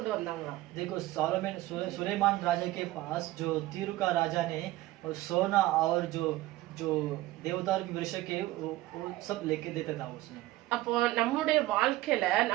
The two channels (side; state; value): left; quieter; 17.1 dB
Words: வந்தாங்களாம். देखो सुलेमान राजा के पास जो तीरू का राजा ने सोना और जो जो देवदार के वृक्ष के वो सब लेके देता था उसने। அப்போ நம்முடைய வாழ்க்கையில